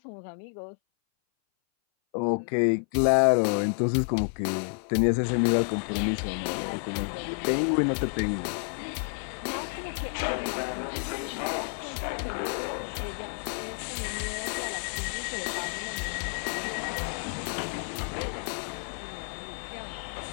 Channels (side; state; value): right; silent; 58 dB below the other